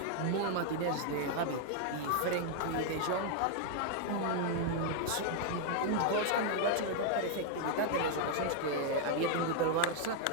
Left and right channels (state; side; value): different; both; correlation 0.00